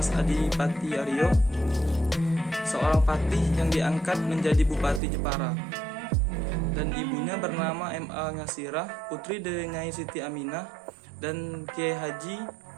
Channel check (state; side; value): drops out; left; at 5.0 s